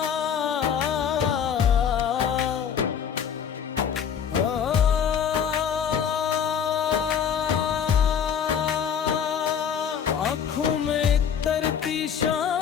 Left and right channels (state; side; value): quieter; right; 7.9 dB